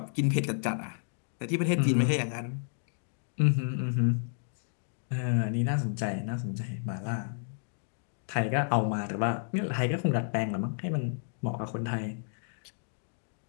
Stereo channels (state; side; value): silent; right; digital silence